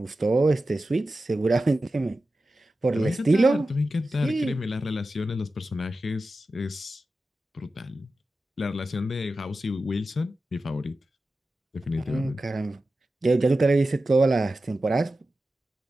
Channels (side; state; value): both; normal; correlation 0.93